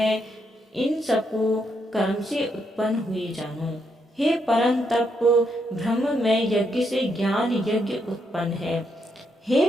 इन सबको कर्म से उत्पन्न हुए जानो। हे परम तप, ब्रह्म में यज्ञ से ज्ञान यज्ञ उत्पन्न है। हे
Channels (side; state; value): both; normal; correlation 0.77